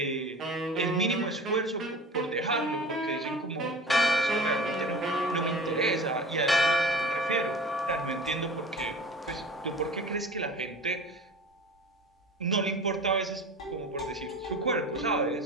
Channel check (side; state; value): both; normal; correlation 0.38